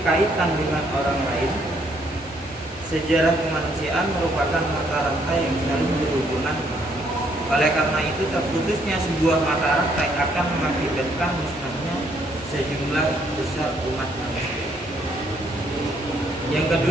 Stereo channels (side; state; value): both; normal; correlation 0.69